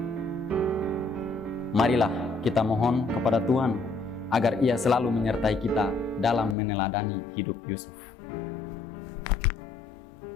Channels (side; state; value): right; drops out; at 6.6 s